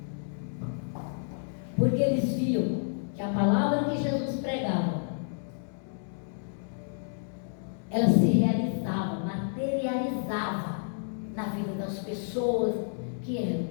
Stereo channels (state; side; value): silent; right; digital silence